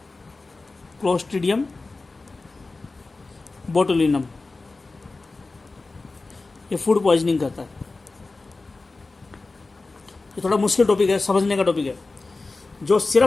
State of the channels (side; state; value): right; quieter; 3.5 dB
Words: क्लोस्ट्रीडियम बोटुलिनम, ये फूड पॉइजनिंग करता है। ये थोड़ा मुश्किल टॉपिक है, समझने का टॉपिक है। जो